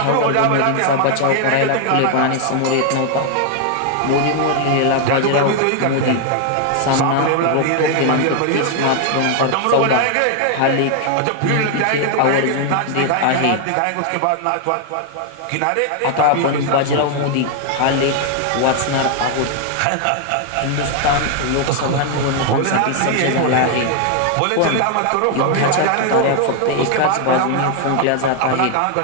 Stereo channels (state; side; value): different; both; correlation 0.00